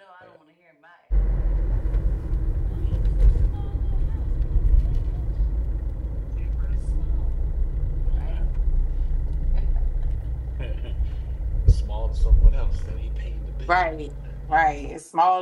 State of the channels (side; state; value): both; identical; correlation 1.00